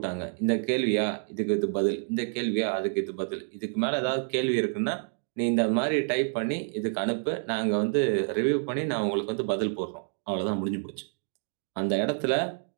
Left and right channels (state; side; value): silent; left; 59 dB below the other